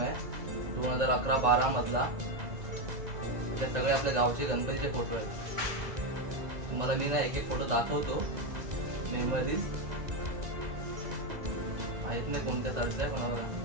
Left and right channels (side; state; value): left; late; 2.0 ms